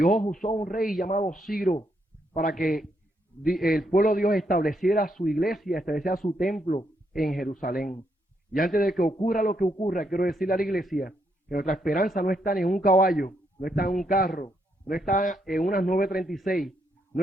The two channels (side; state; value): both; normal; correlation 0.77